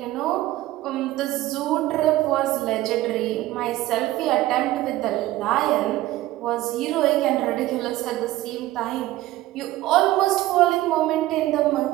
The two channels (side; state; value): left; quieter; 16.3 dB